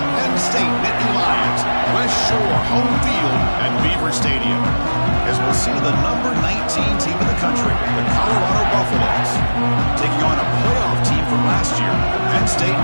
Penn State Nittany Lions. West Shore home field at Beaver Stadium. As we'll see the number 19 team in the country, the Colorado Buffaloes, taking on a playoff team from last year, the Penn State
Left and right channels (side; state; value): both; inverted; correlation -1.00